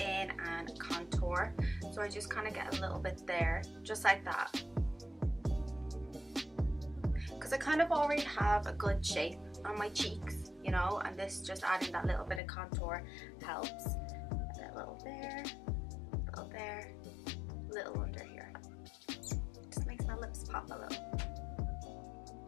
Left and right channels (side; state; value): right; drops out; at 12.4 s